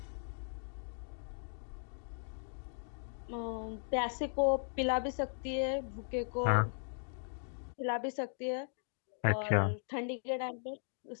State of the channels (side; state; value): right; silent; digital silence